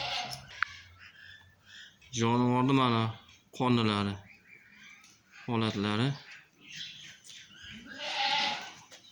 Jonivorning mana qonlari, holatlari.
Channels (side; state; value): both; identical; correlation 1.00